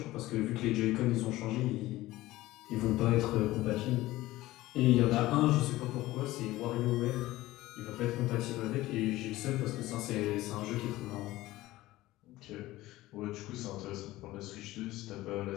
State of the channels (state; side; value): quieter; right; 17.2 dB